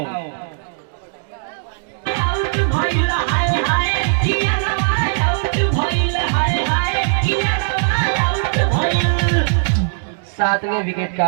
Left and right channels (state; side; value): silent; left; digital silence